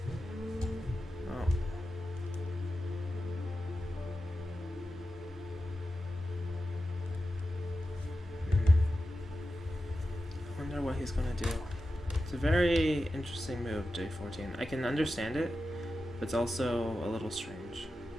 Oh. I wonder what he's gonna do. It's a very interesting move, J14. I can understand it, but it's also a little strange.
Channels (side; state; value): both; normal; correlation 0.92